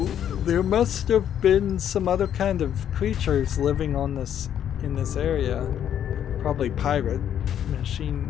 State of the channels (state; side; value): quieter; right; 9.8 dB